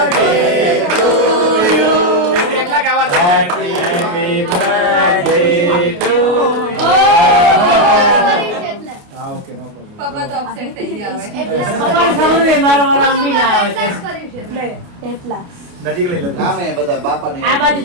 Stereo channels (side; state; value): left; late; 28 ms